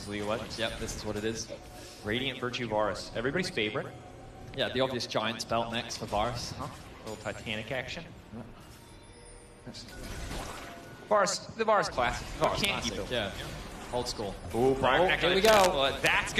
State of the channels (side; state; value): both; identical; correlation 1.00